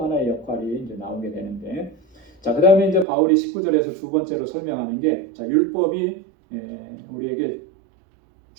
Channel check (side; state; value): left; drops out; at 3.1 s